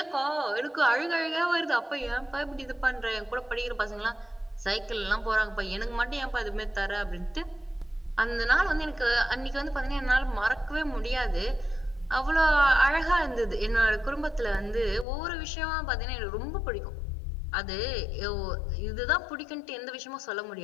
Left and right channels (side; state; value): right; drops out; at 15.1 s